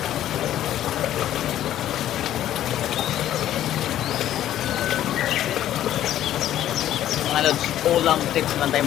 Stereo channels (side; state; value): right; quieter; 12.2 dB